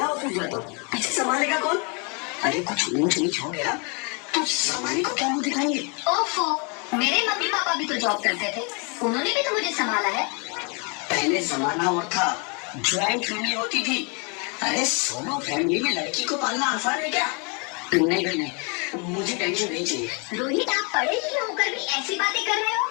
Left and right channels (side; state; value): right; quieter; 34.0 dB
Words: जाता हूँ, पीछे संभालेगा कौन? अरे कुछ ऊंच नीच हो गया तो संभालने को क्या मुंह दिखाएंगे? ओफो, मेरे मम्मी पापा भी तो जॉब करते थे, उन्होंने भी तो मुझे संभाला है। पहले जमाना और था, ज्वाइंट फैमिली होती थी। अरे सोलो फैमिली में लड़की को पालना आसान है क्या? नहीं नहीं, मुझे टेंशन नहीं चाहिए। रोहित, आप पढ़े लिखे होकर भी ऐसी बातें कर रहे हो?